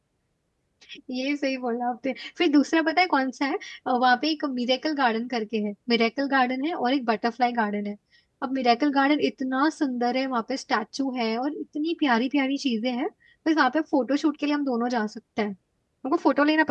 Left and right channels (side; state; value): both; identical; correlation 1.00